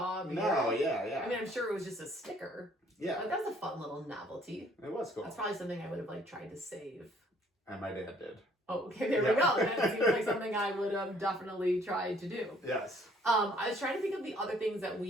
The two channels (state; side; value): normal; both; correlation 0.61